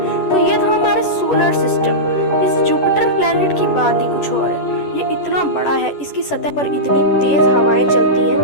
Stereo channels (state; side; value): late; right; 11 ms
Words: तो ये था हमारे सोलर सिस्टम। इस जुपिटर प्लैनेट की बात ही कुछ और है। ये इतना बड़ा है, इसकी सतह पर इतनी तेज हवाएं चलती